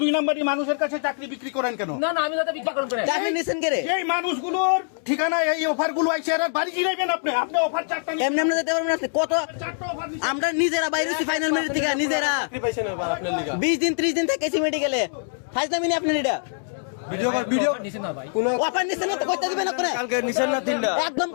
2 নম্বরই মানুষের কাছে চাকরি বিক্রি করেন কেন? না না আমি দাদা বিক্রি করেন এই মানুষগুলোর ঠিকানা এই অফার গুলো আইছে, এরা বাড়ি গিলাইবেন। আপনি আপনি অফার চারটা এমনি এমনি যেতে পারবেন না। কত আমরা নিজেরা বাইরে ফাইনাল মিনিট থেকে নিজেরা 20 দিন 30 দিন থেকে মেডিকেলে ফাইজলামি নি আপনি এটা ভিডিও নিছেন না ভাই অফার নিছেন না কইতে দিবেন না করে কালকে নিছেন না তিনটা একদম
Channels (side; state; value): right; silent; 63 dB below the other